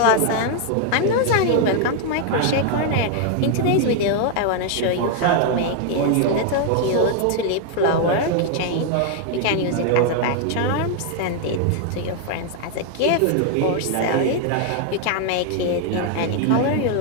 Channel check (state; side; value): different; both; correlation 0.00